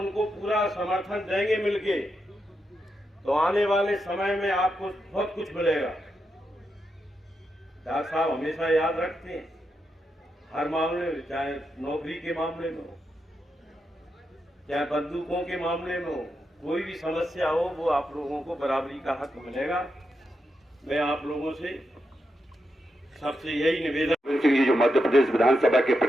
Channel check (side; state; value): both; normal; correlation 0.85